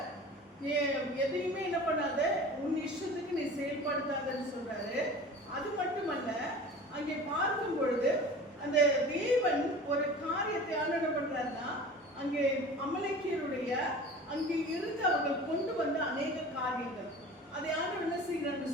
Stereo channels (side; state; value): both; normal; correlation 0.39